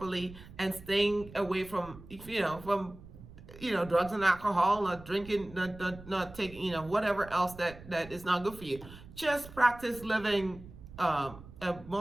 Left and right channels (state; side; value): noise; right; rumble, 17 dB below the sound